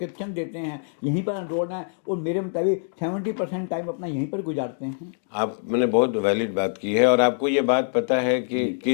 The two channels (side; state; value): right; silent; digital silence